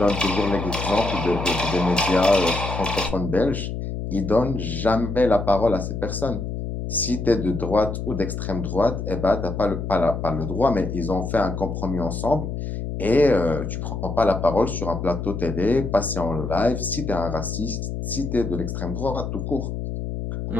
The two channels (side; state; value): left; noise; hum, 5 dB below the sound